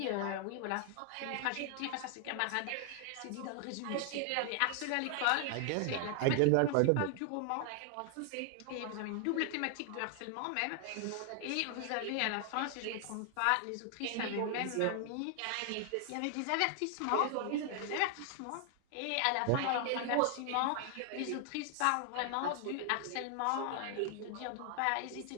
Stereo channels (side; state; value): both; different; correlation 0.00